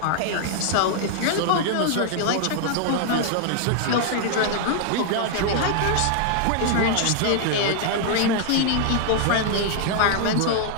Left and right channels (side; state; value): both; different; correlation 0.00